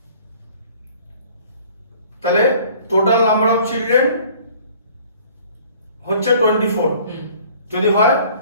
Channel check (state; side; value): inverted; both; correlation -0.53